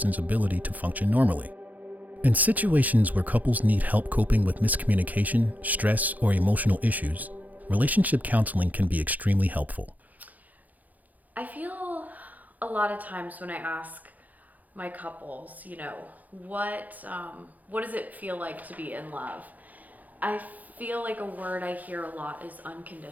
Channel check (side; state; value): left; late; 0.080 ms